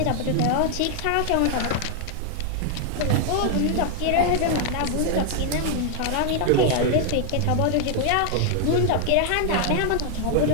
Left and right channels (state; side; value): different; both; correlation 0.00